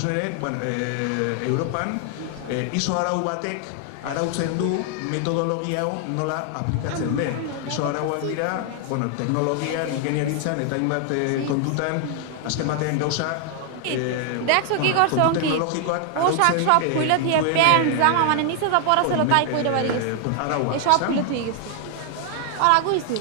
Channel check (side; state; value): both; different; correlation 0.00